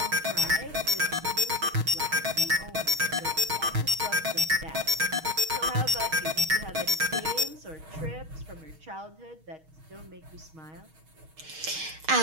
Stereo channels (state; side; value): late; left; 6.3 ms